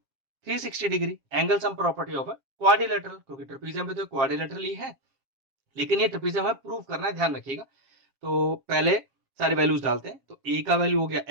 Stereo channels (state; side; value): late; left; 7.3 ms